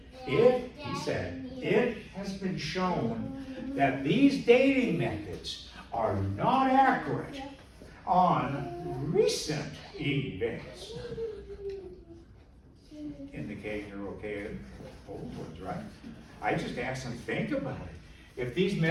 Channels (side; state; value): both; identical; correlation 1.00